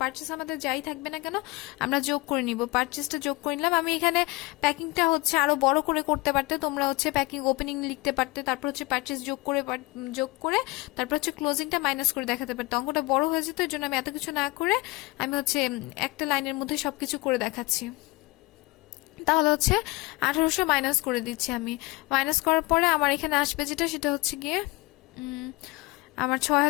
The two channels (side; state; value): right; quieter; 23.0 dB